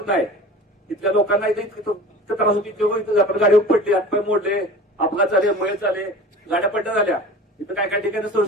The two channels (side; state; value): both; normal; correlation 0.39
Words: नाही. तिथल्या लोकांना इथं त्रास होती. आपण गाडीवर पडले, हातपाय मोडले, अपघात झाले, मयत झाले, गाड्या पड्ड्या झाल्या. इथं काय काय